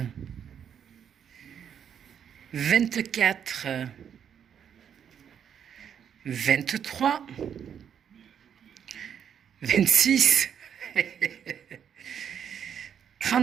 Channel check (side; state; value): left; quieter; 8.3 dB